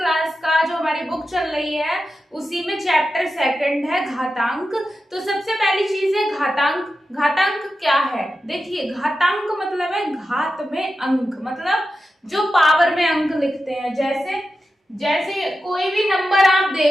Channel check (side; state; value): both; normal; correlation 0.91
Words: का जो हमारी बुक चल रही है, उसी में चैप्टर 2 है घातांक। तो सबसे पहली चीज है घातांक। घातांक क्या है? देखिए, घातांक मतलब है घात में अंक, मतलब जो पावर में अंक लिखते हैं। जैसे कोई भी नंबर आप